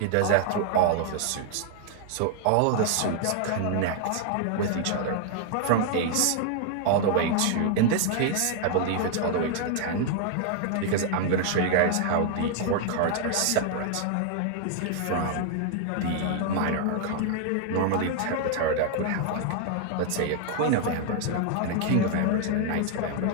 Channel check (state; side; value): different; both; correlation 0.00